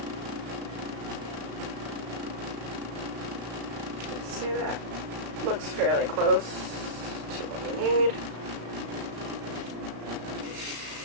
Okay, that looks fairly close to what we need.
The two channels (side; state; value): left; late; 36 ms